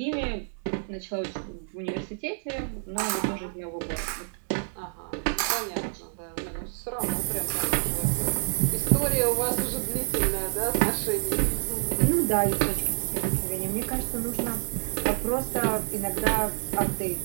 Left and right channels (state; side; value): silent; left; 58 dB below the other